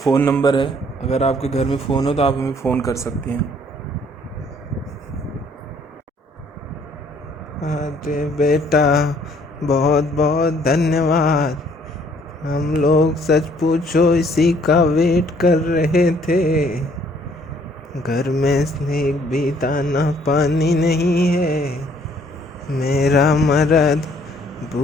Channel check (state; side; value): normal; both; correlation 0.62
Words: नंबर है, अगर आपके घर में फ़ोन हो तो आप हमें फ़ोन कर सकती हैं। अरे बेटा, बहुत बहुत धन्यवाद। हम लोग सच पूछो इसी का वेट कर रहे थे। घर में एक भी दाना पानी नहीं है। मेरा मर्द